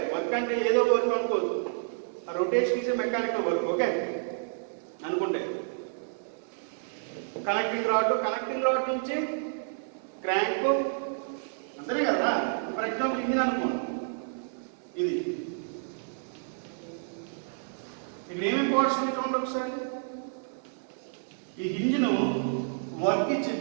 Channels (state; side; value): silent; left; digital silence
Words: వర్క్ అంటే ఏదో వర్క్ అనుకోవద్దు, ఆ rotation is mechanical work. Okay అనుకుంటే కనెక్టింగ్ రాడ్ నుంచి క్రాంక్, అంతనే కదా. ఫర్ ఎగ్జాంపుల్ ఇంజిన్ అనుకోండి, ఇది ఇక్కడ ఏమేమి పార్ట్స్ చూడండి ఒకసారి. ఈ ఇంజిన్ వర్క్